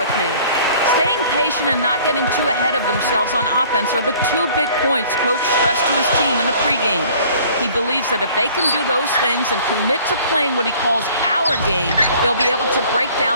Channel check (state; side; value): inverted; both; correlation -0.52